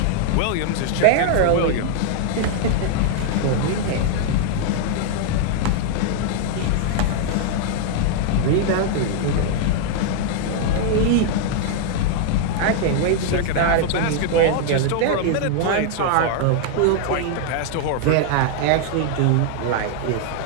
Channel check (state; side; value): different; both; correlation 0.00